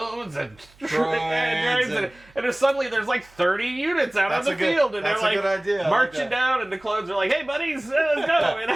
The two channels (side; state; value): right; noise; hum, 28 dB below the sound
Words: and droids, and then suddenly there's like 30 units out on the field, and they're like marching down, and the clones are like, hey buddies, let's go, and